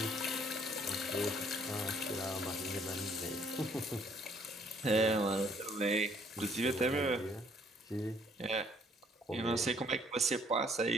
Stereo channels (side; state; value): both; normal; correlation 0.63